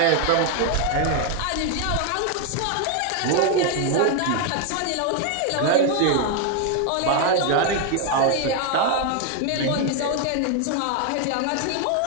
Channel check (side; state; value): both; different; correlation 0.01